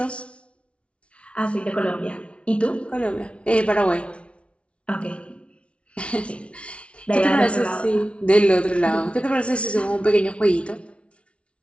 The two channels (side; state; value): right; late; 0.060 ms